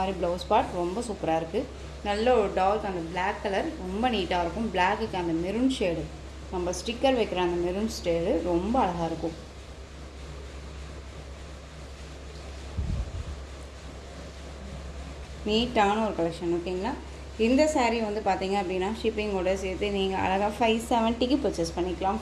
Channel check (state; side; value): identical; both; correlation 1.00